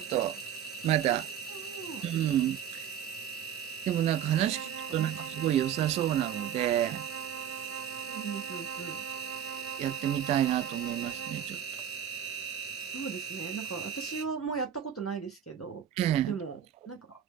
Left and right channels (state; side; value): quieter; left; 9.6 dB